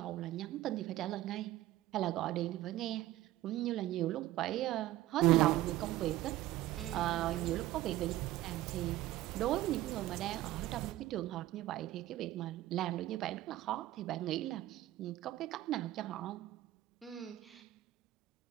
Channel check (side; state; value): left; quieter; 15.5 dB